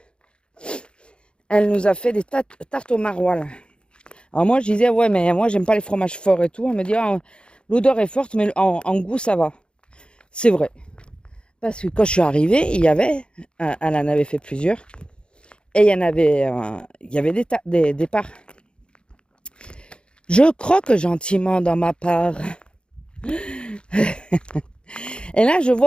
elle nous a fait des tartes au maroilles. Alors moi, je disais, ouais, mais moi, j'aime pas les fromages forts et tout. Elle me dit, l'odeur est forte, mais en goût, ça va. C'est vrai. Parce que quand je suis arrivée, il y avait, elle en avait fait plusieurs, et il y avait des parts. Je croque gentiment dans ma part. Et là, je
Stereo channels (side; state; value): right; late; 0.054 ms